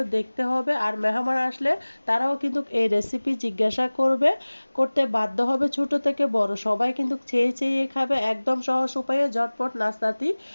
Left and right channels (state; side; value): inverted; both; correlation -1.00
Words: দেখতে হবে। আর মেহমান আসলে তারাও কিন্তু এই রেসিপি জিজ্ঞাসা করতে বাধ্য হবে। ছোট থেকে বড় সবাই কিন্তু চেয়ে চেয়ে খাবে। একদম সহজ উপায়ে ঝটপট নাস্তাটি